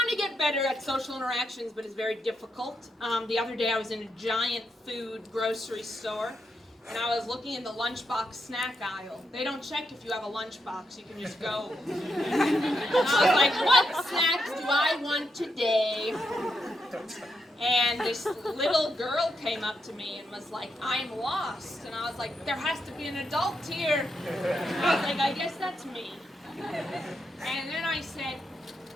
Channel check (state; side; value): normal; both; correlation 0.83